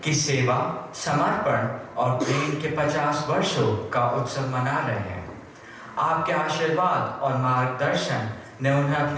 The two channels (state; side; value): identical; both; correlation 1.00